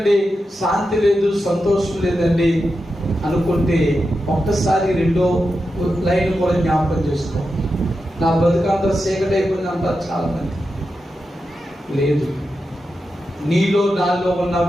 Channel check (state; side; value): normal; both; correlation 0.89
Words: శాంతి లేదు, సంతోషం లేదండి అనుకుంటే ఒక్కసారి రెండో లైన్ కూడా జ్ఞాపకం చేసుకో. నా బ్రతికంతా చీకటి అయిపోయింది అంటారు చాలా మంది. లేదు, నీలో నాలో ఉన్న